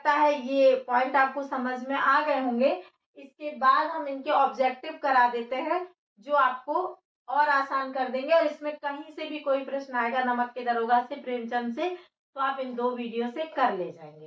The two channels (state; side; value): identical; both; correlation 1.00